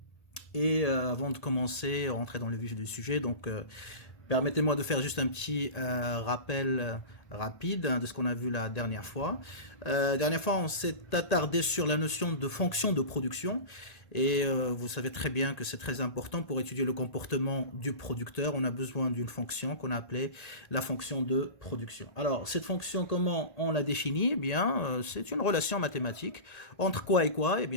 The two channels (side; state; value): right; late; 1.5 ms